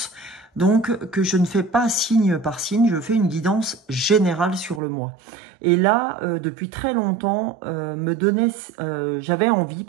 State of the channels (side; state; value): left; drops out; at 4.8 s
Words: donc que je ne fais pas signe par signe, je fais une guidance générale sur le mois. Et là, depuis très longtemps, j'avais envie